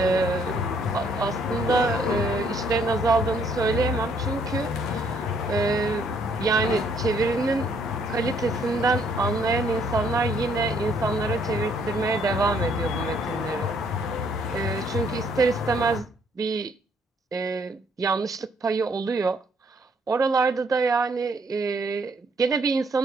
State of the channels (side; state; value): both; normal; correlation 0.67